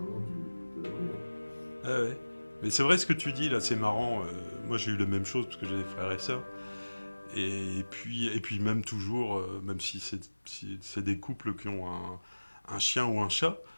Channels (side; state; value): both; inverted; correlation -1.00